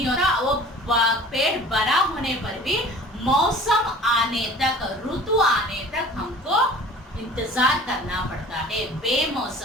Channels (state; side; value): normal; both; correlation 0.45